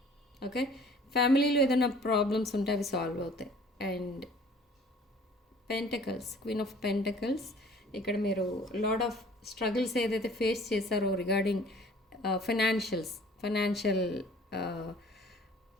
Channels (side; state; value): both; normal; correlation 0.51